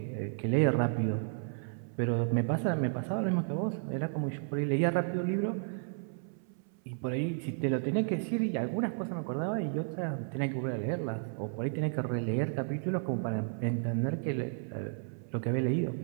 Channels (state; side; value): silent; left; 56 dB below the other